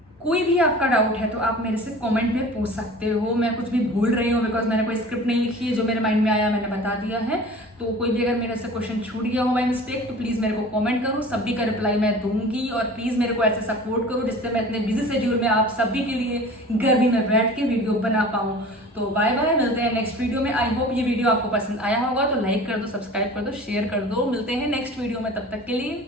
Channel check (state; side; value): normal; both; correlation 0.41